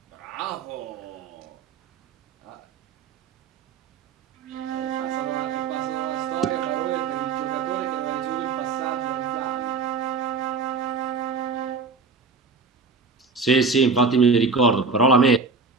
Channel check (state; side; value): quieter; left; 4.5 dB